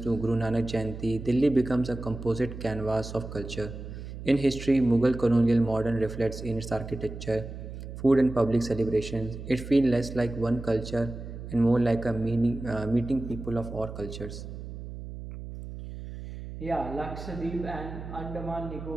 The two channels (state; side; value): noise; right; hum, 10 dB below the sound